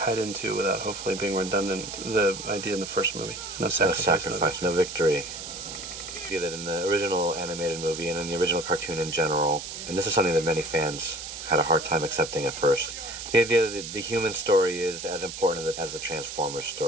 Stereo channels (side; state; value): right; noise; hiss, 9 dB below the sound